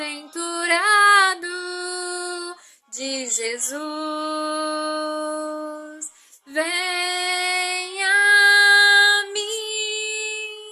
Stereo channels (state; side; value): identical; both; correlation 1.00